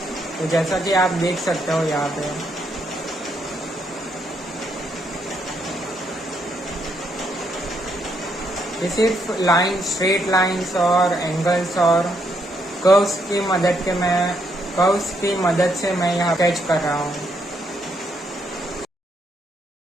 तो जैसा कि आप देख सकते हो यहाँ पे ये सिर्फ लाइन, स्ट्रेट लाइंस और एंगल्स और कर्व्स की मदद से मैं यहाँ स्केच कर रहा हूँ।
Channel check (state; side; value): normal; both; correlation 0.75